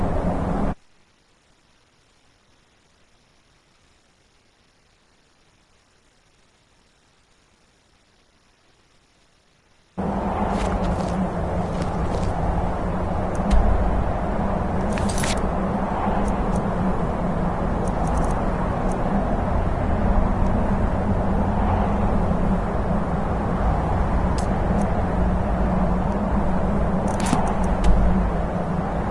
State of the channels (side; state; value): both; identical; correlation 1.00